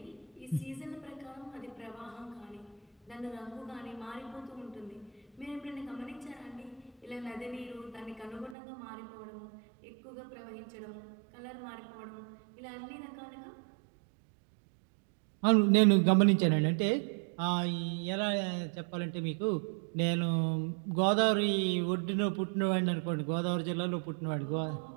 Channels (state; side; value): drops out; left; at 8.6 s